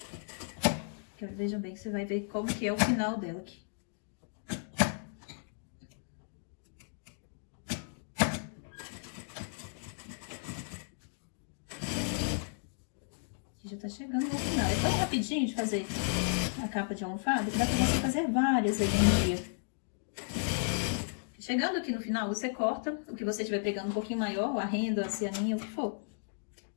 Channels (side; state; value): right; silent; digital silence